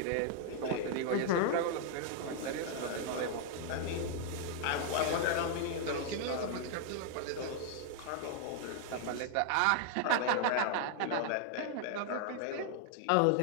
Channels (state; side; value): different; both; correlation 0.00